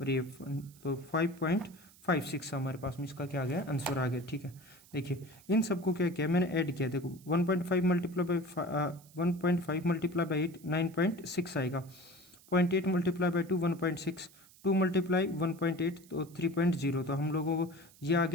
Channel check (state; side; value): noise; right; hiss, 25 dB below the sound